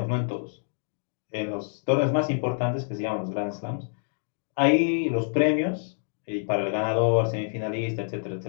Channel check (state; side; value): silent; right; digital silence